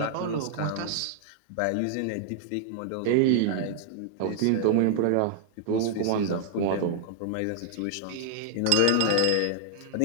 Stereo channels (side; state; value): both; different; correlation -0.01